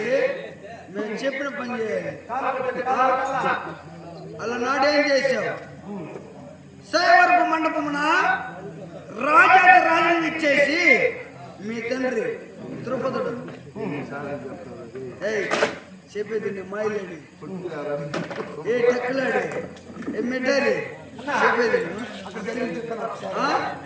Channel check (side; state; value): both; identical; correlation 1.00